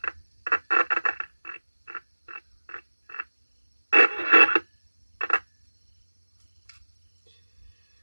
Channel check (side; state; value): both; inverted; correlation -1.00